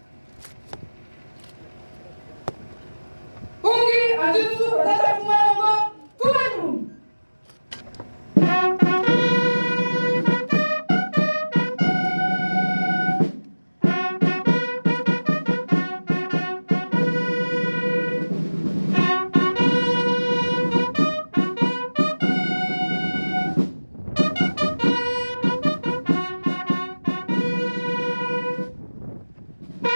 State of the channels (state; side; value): inverted; both; correlation -1.00